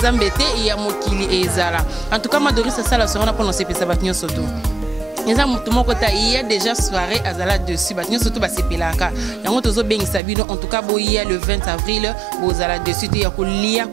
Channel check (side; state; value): left; drops out; at 10.2 s